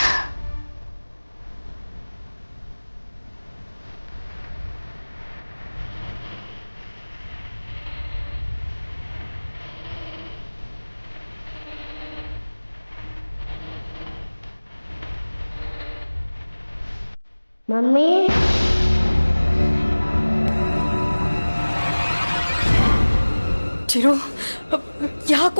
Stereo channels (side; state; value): both; inverted; correlation -1.00